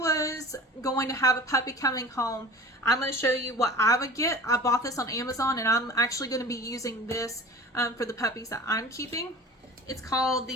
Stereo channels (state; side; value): normal; both; correlation 0.39